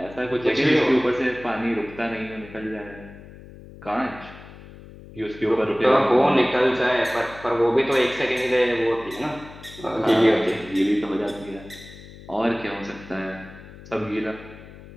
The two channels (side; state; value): left; noise; hum, 18 dB below the sound